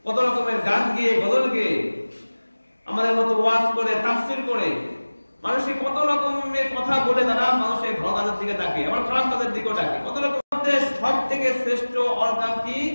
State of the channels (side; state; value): both; inverted; correlation -1.00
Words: কত রকমের গান গেয়ে, গজল গেয়ে, আমাদের মতো ওয়াজ করে, তাফসীর করে, মানুষকে কত রকমের কথা বলে তারা মানুষের ভালো কাজের দিকে তাকে, আবার খারাপ কাজের দিকেও তাকে। কত রকম সব থেকে শ্রেষ্ঠ অর্গান কি,